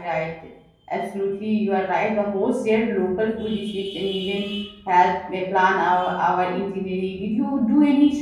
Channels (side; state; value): both; identical; correlation 1.00